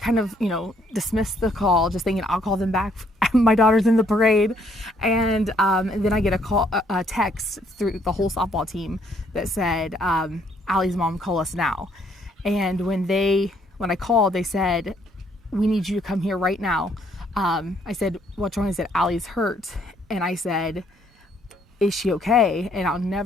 of, dismissed the call, just thinking I'll call them back. My daughter's in the parade. And then I get a text through the whole softball team that said, Allie's mom, call us now. And when I called, they said, we need you to come here right now. I said, what's wrong? He said, Allie's hurt. And I said, is she okay?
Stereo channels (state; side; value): normal; both; correlation 0.67